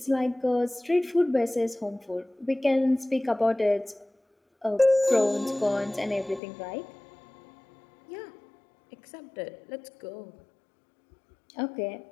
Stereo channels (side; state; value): right; drops out; at 6.4 s